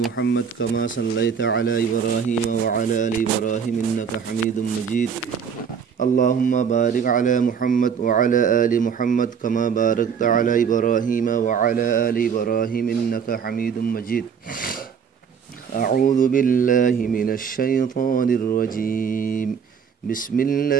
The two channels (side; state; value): left; quieter; 7.0 dB